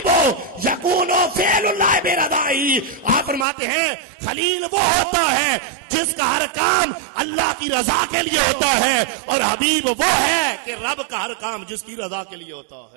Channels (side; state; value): left; drops out; at 3.5 s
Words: یکون فعل اللہ برضاہ۔ آپ فرماتے ہیں خلیل وہ ہوتا ہے جس کا ہر کام اللہ کی رضا کے لیے ہوتا ہے، اور حبیب وہ ہے کہ رب کا ہر کام جس کی رضا کے لیے ہوتا